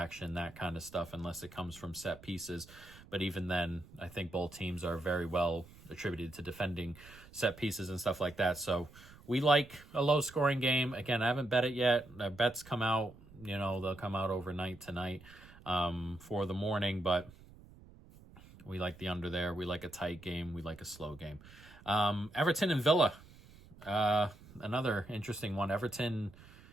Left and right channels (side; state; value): right; noise; rumble, 21 dB below the sound